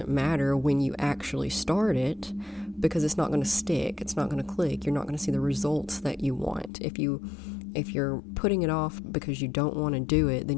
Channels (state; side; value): drops out; right; at 6.7 s